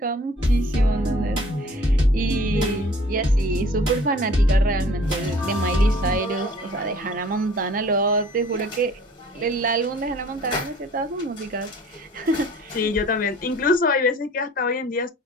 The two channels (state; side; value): normal; both; correlation 0.51